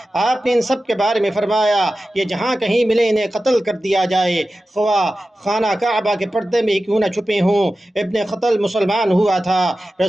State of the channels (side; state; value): both; normal; correlation 0.94